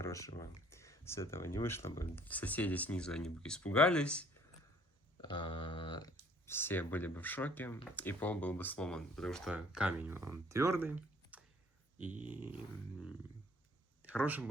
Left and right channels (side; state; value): both; normal; correlation 0.57